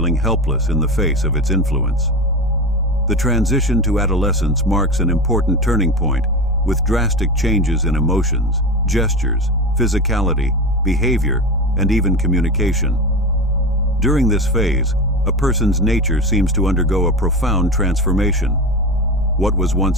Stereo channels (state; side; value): normal; both; correlation 0.24